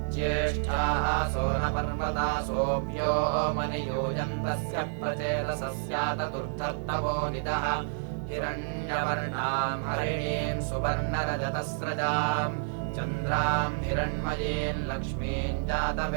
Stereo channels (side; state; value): left; silent; digital silence